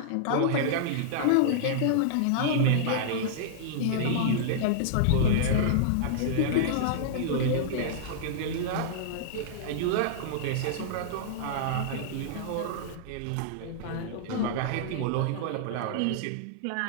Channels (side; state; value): both; different; correlation -0.02